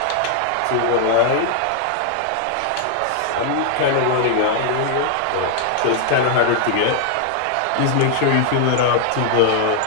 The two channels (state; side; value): different; both; correlation 0.00